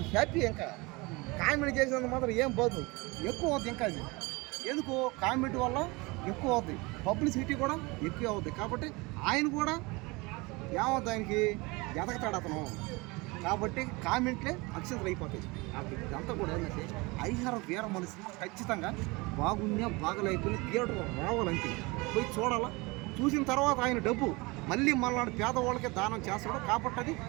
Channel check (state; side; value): quieter; left; 25.1 dB